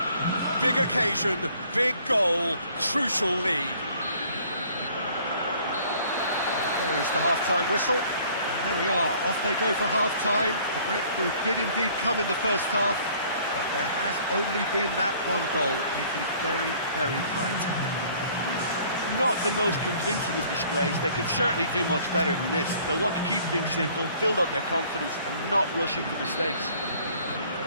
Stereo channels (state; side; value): inverted; both; correlation -0.56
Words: Big occasion, big goal, crucial lead. There is the half-time whistle. And there we are, off they go for half-time. The breakthrough did indeed come in the first half, but there has only been that one goal. It is very, very tight. Not the most convincing of displays. They could certainly do much better than this. They'll want to keep things simple, build up their confidence and not rush into mistakes.